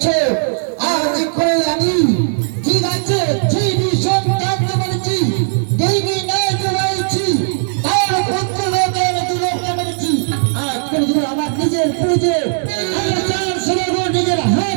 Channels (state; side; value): silent; left; digital silence